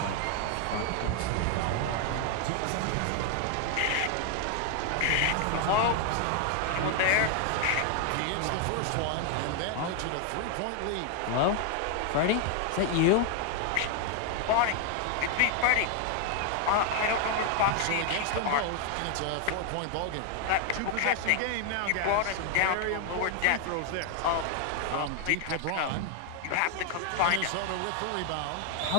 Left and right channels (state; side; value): different; both; correlation 0.00